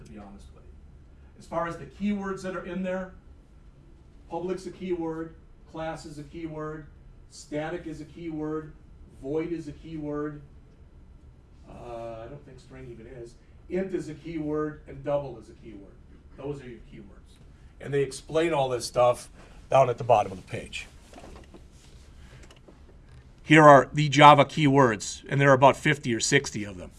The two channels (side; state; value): both; identical; correlation 1.00